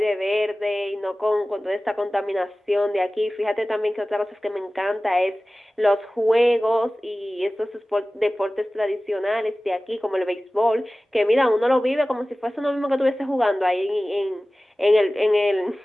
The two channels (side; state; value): both; normal; correlation 0.97